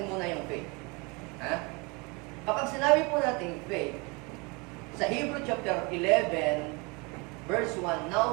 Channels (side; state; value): left; quieter; 28.6 dB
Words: muna yung faith. Kapag sinabi po natin faith, sa Hebrew chapter 11, verse 1,